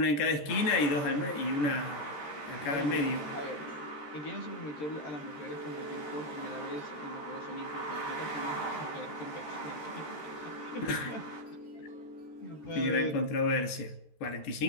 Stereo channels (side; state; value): right; late; 13 ms